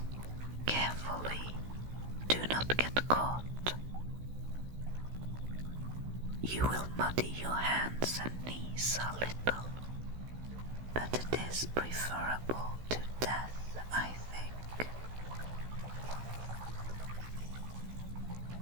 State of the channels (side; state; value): left; late; 16 ms